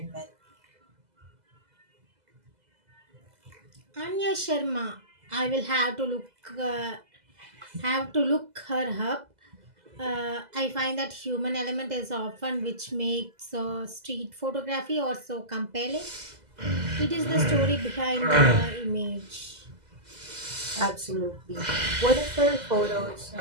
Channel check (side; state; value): left; late; 2.0 ms